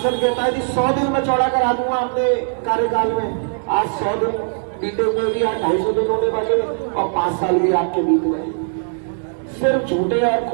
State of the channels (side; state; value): left; silent; 66 dB below the other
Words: कहता है जी 100 दिन में चौड़ा करा दूंगा अपने कार्यकाल में। आज 100 दिन बीते हुए भी, आज 250 दिन होने वाले और 5 साल भी आपके बीत गए। सिर्फ झूठे और